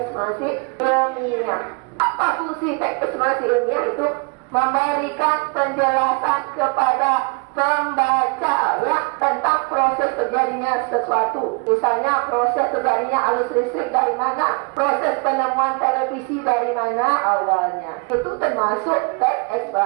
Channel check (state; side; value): quieter; left; 32.1 dB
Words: ilmiah. Apa fungsi teks eksplanasi ilmiah? Itu memberikan penjelasan kepada pembaca ya tentang proses terjadinya sesuatu. Misalnya proses terjadinya arus listrik dari mana, proses penemuan televisi dari mana awalnya. Itu termasuk teks